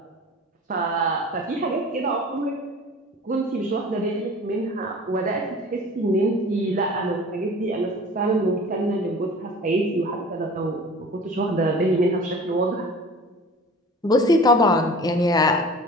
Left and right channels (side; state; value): both; normal; correlation 0.42